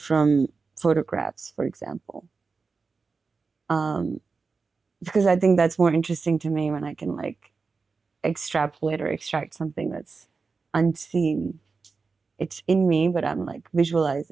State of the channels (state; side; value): quieter; left; 4.5 dB